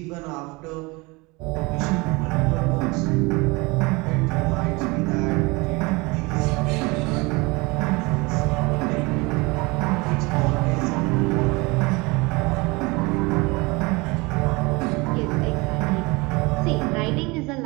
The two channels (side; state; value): left; quieter; 25.3 dB